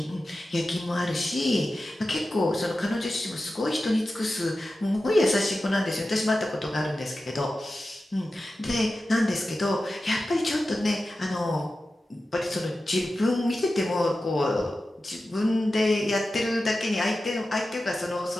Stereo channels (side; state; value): both; normal; correlation 0.93